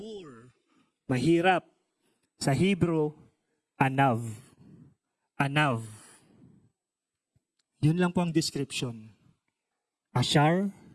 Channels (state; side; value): identical; both; correlation 1.00